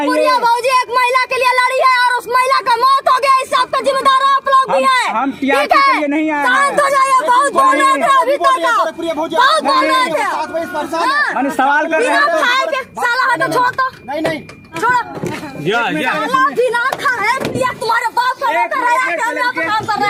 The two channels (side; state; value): both; identical; correlation 1.00